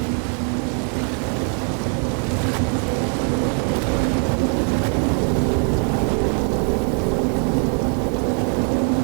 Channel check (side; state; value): left; quieter; 34.3 dB